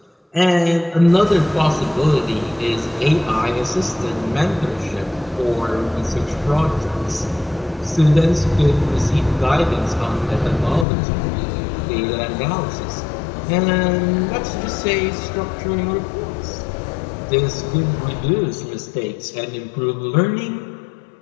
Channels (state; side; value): drops out; right; at 10.9 s